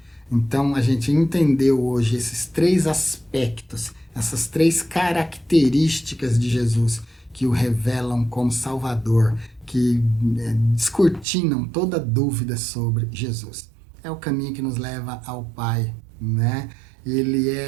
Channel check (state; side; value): drops out; left; at 11.2 s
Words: Então, a gente entendeu hoje esses 3 aspectos, essas 3 características de Jesus que o revelam como Salvador, que descortinam toda dúvida sobre Jesus. É o caminho que nos leva ao Pai, né? Ele